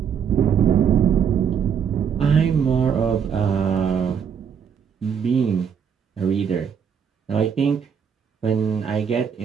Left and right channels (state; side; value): quieter; left; 7.4 dB